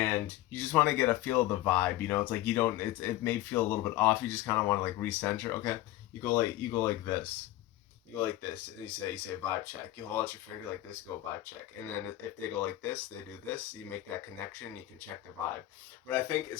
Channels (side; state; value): right; quieter; 15.2 dB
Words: you just want to get a feel of the vibe, it's like you don't. It may feel a little bit off. You just kind of want to like recenter. Okay, you go like this. You go like this, and you say vibe check. You hold out your finger like this, go vibe check, and then if they go like this, they do this. You make that connection. You can check the vibe. What I think